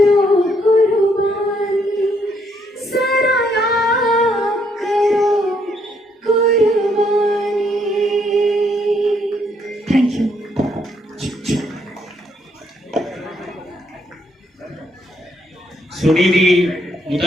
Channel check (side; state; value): both; normal; correlation 0.71